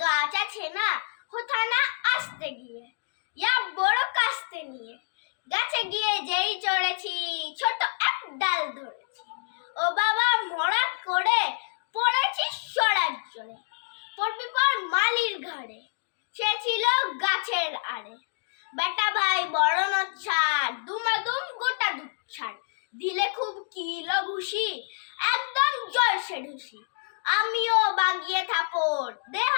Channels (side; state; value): right; silent; digital silence